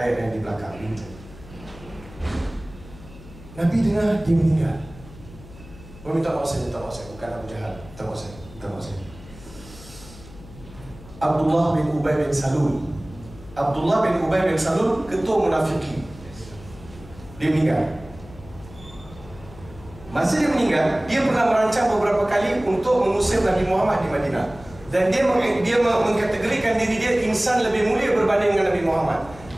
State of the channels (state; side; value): noise; left; hum, 19 dB below the sound